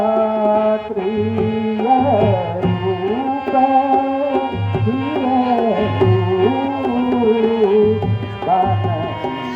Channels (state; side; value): identical; both; correlation 1.00